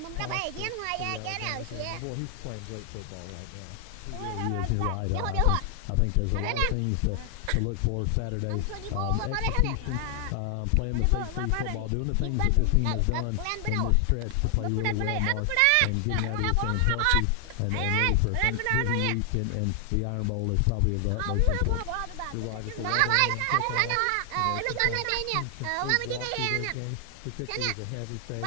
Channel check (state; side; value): different; both; correlation 0.00